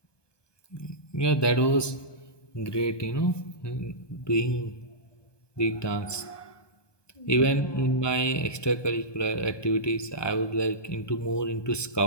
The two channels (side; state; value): right; late; 1.2 ms